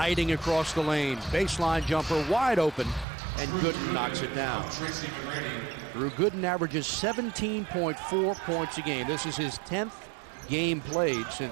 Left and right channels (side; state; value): left; drops out; at 3.1 s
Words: across the lane. Baseline jumper wide open, and Gooden knocks it down. Drew Gooden averages 17.4 points a game. This is his 10th game played